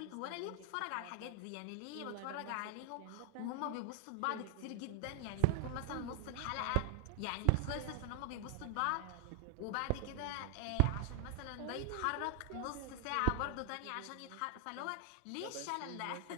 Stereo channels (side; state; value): both; different; correlation 0.00